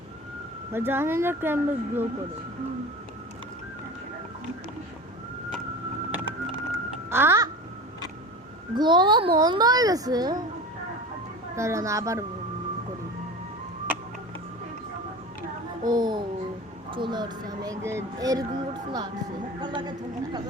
জানি না কেমন গ্লো করে। গ্লো বন্ধ হয়ে গেছে, দাঁড়ান আবার করি। ও চলে আসছে, আমি এরকম করছিল আসছে,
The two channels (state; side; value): normal; both; correlation 0.32